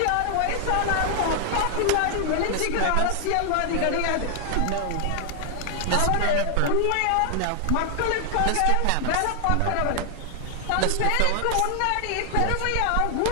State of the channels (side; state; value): both; different; correlation 0.00